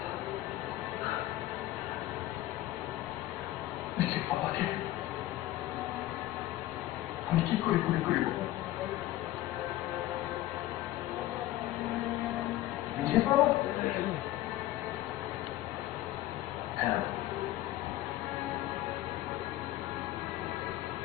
নিজের বাবাকে আমি কি করে গুলি করিব? নিজের বাবা? হ্যাঁ,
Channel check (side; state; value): right; quieter; 15.3 dB